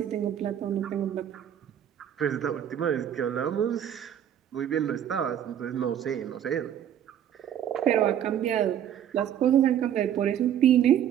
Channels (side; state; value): left; quieter; 10.0 dB